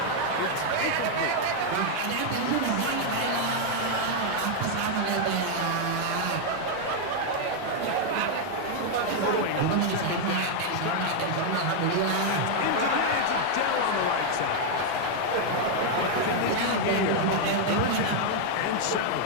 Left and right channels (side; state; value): both; different; correlation 0.00